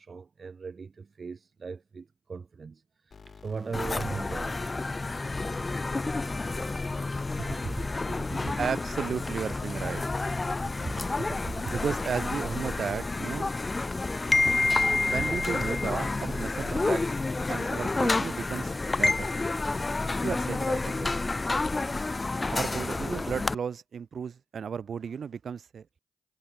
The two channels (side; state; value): both; normal; correlation 0.93